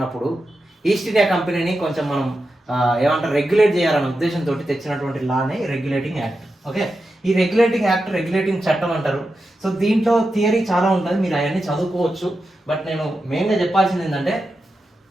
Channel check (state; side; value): normal; both; correlation 0.90